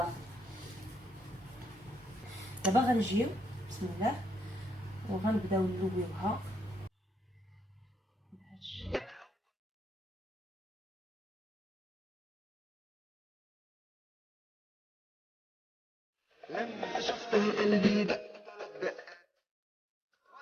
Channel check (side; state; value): both; normal; correlation 0.84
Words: دابا غنجيو بسم الله وغنبداو نلويوها بهادشي. لما شفته قلبي دق دق